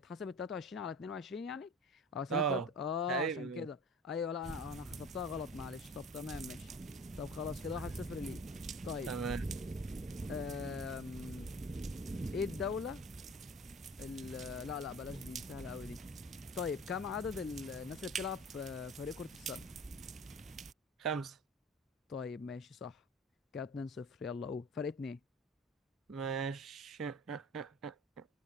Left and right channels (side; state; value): both; normal; correlation 0.41